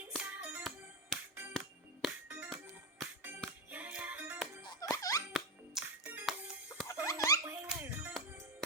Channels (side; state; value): both; normal; correlation 0.10